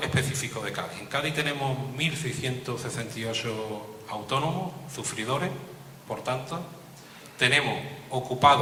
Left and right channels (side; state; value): both; identical; correlation 1.00